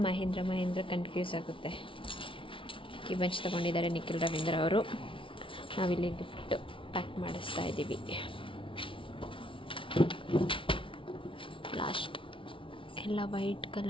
ಮಹೇಂದ್ರ ಕನ್ಫ್ಯೂಸ್ ಆಗುತ್ತೆ. ಕಿಬಂಚ್ ತೊಗೊಂಡಿದ್ದಾರೆ ನಿಖಿಲ್ ರವೀಂದ್ರ ಅವರು. ನಾವಿಲ್ಲಿ ಗಿಫ್ಟ್ ಪ್ಯಾಕ್ ಮಾಡಿಸ್ತಾ ಇದ್ದೀವಿ. ಲಾಸ್ಟ್ ಎಲ್ಲ ವೈಟ್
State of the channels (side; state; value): right; late; 0.25 ms